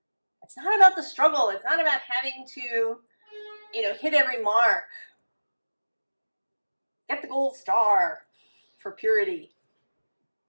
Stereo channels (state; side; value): inverted; both; correlation -1.00